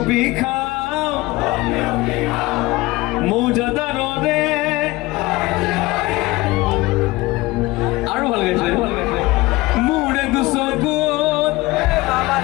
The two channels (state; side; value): quieter; right; 20.4 dB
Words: খাওঁ মৌজাদাৰৰে আৰু ভাল গাইছে মোৰে দুচকুত